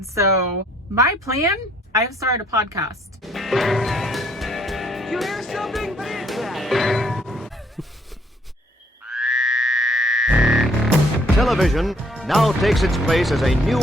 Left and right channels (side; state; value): both; normal; correlation 0.64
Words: my plan, I've started a podcast. You hear something? What is that? Television now takes its place as a new